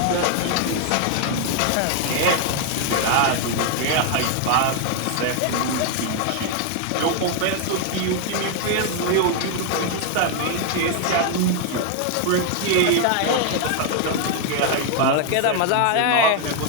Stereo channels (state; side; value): different; both; correlation 0.00